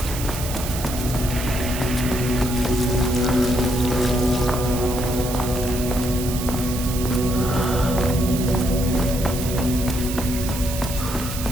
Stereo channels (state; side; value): noise; right; hiss, 8 dB below the sound